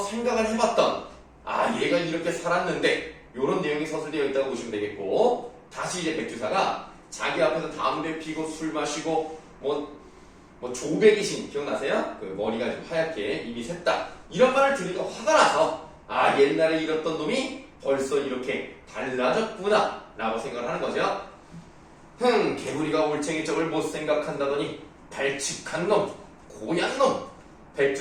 생각을 해봤던 얘가 이렇게 살았는데 이런 내용이 서술되어 있다고 보시면 되겠고 다시 이제 백주사가 자기 앞에서 담배 피고 술 마시고 뭐 조백이신 기억나세요? 그 머리가 좀 하얗게 입이 샜다 이런 말을 들으니까 화가 나서 옛날에 이랬던 놈이 벌써 이렇게 달라졌구나 라고 생각을 하는 거죠. 개구리가 올챙이 쪽을 못 생각한다더니 발칙한 놈, 고얀 놈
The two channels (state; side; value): identical; both; correlation 1.00